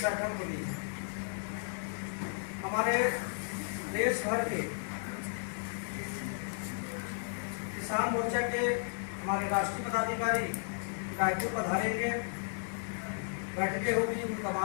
बैठक हुई है। हमारे देश भर के किसान मोर्चा के हमारे राष्ट्रीय पदाधिकारी रायपुर पधारेंगे, बैठकें होगी, उनका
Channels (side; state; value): right; silent; digital silence